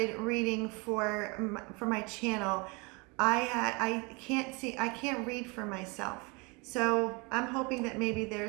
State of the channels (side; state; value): left; quieter; 28.9 dB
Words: reading for my channel, I can't read for myself. So I'm hoping that maybe